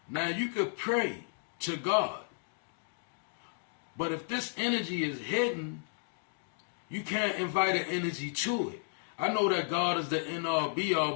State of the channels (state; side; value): silent; right; digital silence